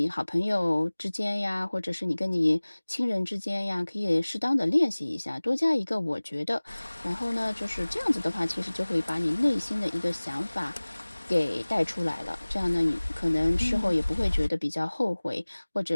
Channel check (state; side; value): inverted; both; correlation -1.00